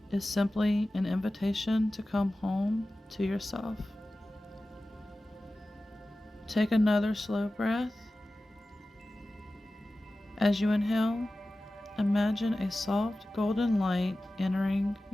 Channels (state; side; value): normal; both; correlation 0.95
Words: is simply an invitation to come home to yourself. Take another slow breath. As you inhale, imagine a soft golden light entering